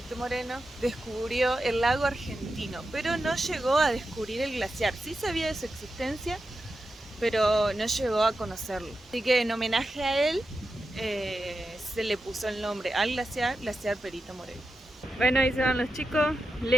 Moreno, descubrió el lago argentino, pero no llegó a descubrir el glaciar. Sí sabía de su existencia, pero no llegó a conocerlo. Así que en homenaje a él se le puso el nombre al glaciar Perito Moreno. Bueno, ahí se van los chicos,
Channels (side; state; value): both; normal; correlation 0.90